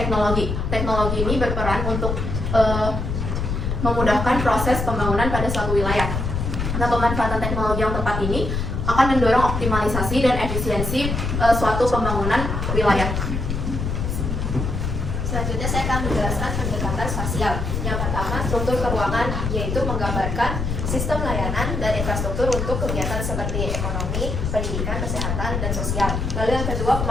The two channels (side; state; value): left; noise; rumble, 2 dB below the sound